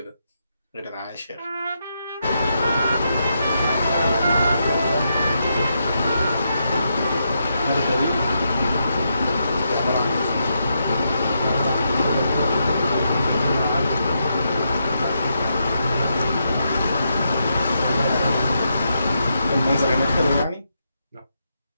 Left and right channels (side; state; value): both; inverted; correlation -0.82